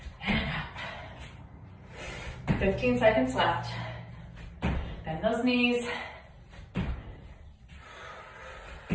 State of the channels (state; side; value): identical; both; correlation 1.00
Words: And up. 15 seconds left. Bend those knees.